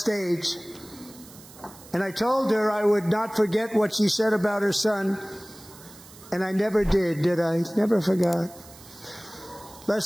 And I told her I would not forget what she said about her son. And I never did I? Never forgot.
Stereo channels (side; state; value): right; noise; hiss, 20 dB below the sound